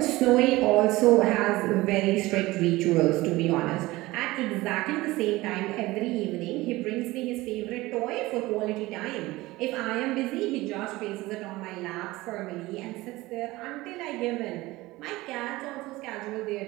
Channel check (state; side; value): quieter; left; 19.5 dB